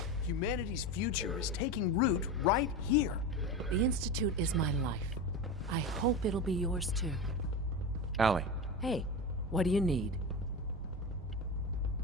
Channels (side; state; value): both; normal; correlation 0.22